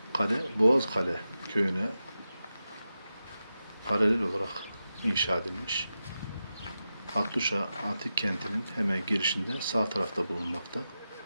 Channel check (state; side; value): inverted; both; correlation -0.91